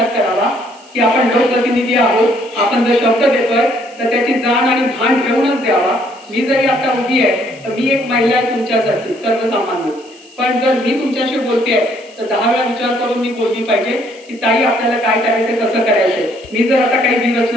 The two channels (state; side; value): noise; right; hiss, 26 dB below the sound